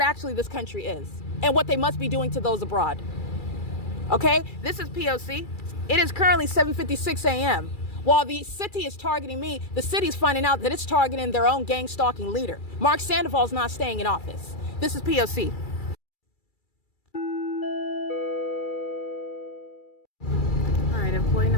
actually this country is and what they must be doing to those abroad. Okay, this is P.O.C. It is currently 7:56 a.m. While the city is targeting me, the city is finding out that it's targeting their own gang stalking leader. Mark Sandoval is not staying in office. This is P.O.C. All right, employee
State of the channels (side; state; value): right; late; 2.3 ms